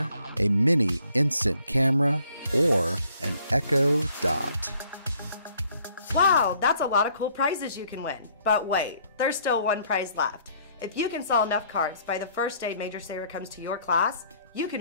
a mini instant camera, or an Echo Dot. Wow, that's a lot of cool prizes you can win. But wait, there's still one prize left. If you can sell enough cards by the first day Major Saver comes to your class, you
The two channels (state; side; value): inverted; both; correlation -0.62